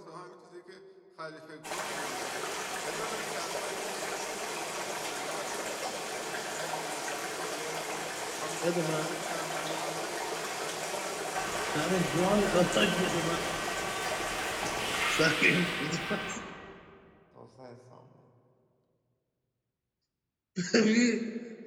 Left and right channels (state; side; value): identical; both; correlation 1.00